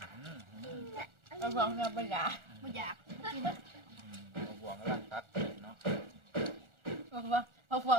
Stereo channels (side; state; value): left; late; 1.4 ms